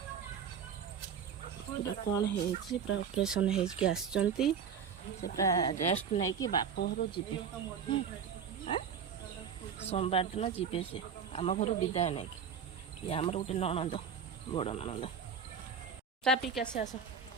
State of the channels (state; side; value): quieter; left; 7.0 dB